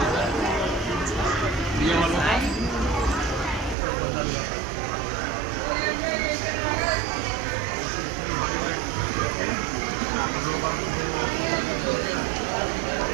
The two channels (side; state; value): left; drops out; at 3.8 s